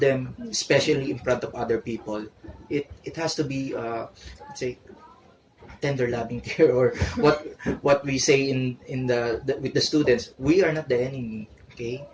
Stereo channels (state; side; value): identical; both; correlation 1.00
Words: especially in front of other people. It has to be let's say tender loving care, or what we say in the with the students. We are not the enemy. Okay,